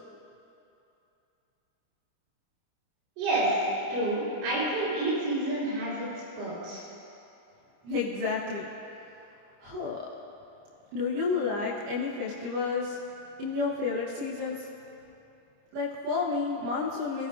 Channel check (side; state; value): left; late; 30 ms